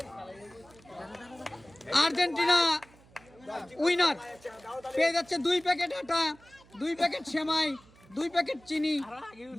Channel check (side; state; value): right; noise; hum, 26 dB below the sound